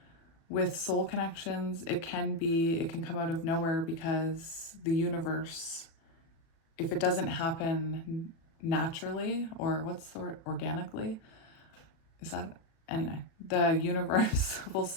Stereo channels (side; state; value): right; late; 36 ms